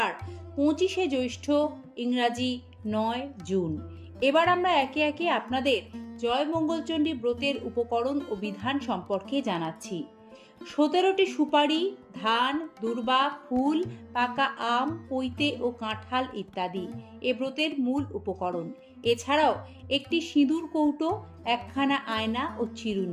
25শে জ্যৈষ্ঠ, ইংরাজি 9 জুন। এবার আমরা একে একে আপনাদের জয় মঙ্গলচণ্ডী ব্রতের উপকরণ ও বিধান সম্পর্কে জানাচ্ছি। 17টি সুপারি, ধান, দূর্বা, ফুল, পাকা আম, পৈতে ও কাঁঠাল ইত্যাদি এ ব্রতের মূল উপকরণ। এছাড়াও একটি সিঁদুর কৌটো, একখানা আয়না ও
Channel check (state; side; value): identical; both; correlation 1.00